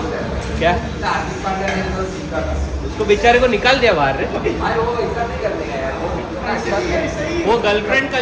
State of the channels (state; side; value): identical; both; correlation 1.00